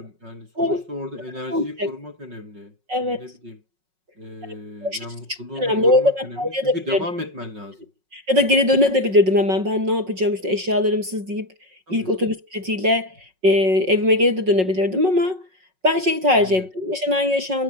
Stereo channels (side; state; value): left; late; 5.4 ms